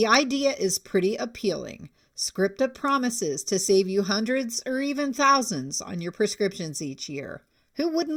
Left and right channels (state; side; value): identical; both; correlation 1.00